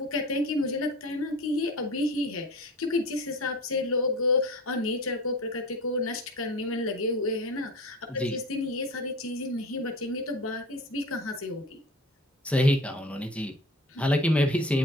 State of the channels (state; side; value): normal; both; correlation 0.36